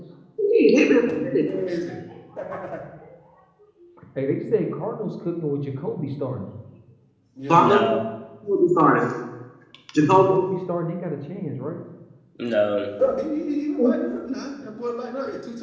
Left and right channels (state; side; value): identical; both; correlation 1.00